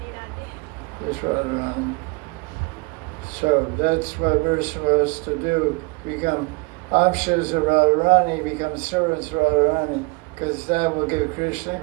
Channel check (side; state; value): left; quieter; 27.8 dB